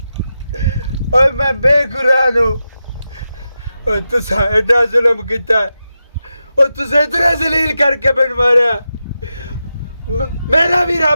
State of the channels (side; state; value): both; inverted; correlation -0.90